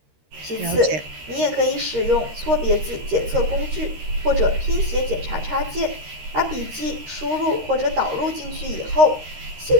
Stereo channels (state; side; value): late; left; 13 ms